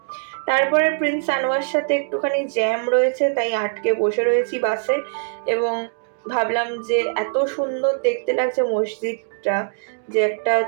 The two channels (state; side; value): silent; left; digital silence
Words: তারপরে প্রিন্স আনোয়ার সাথে একটুখানি জ্যাম রয়েছে, তাই আটকে বসে রয়েছি বাসে এবং ভাবলাম যে এত সুন্দর দেখতে লাগছে মসজিদটা যে একটা